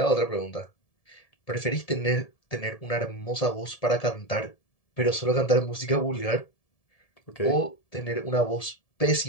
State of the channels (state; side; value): late; right; 1.7 ms